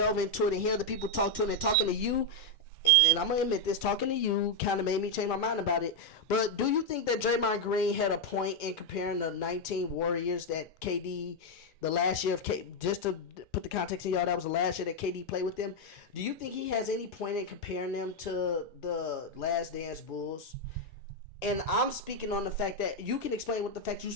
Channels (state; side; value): normal; both; correlation 0.02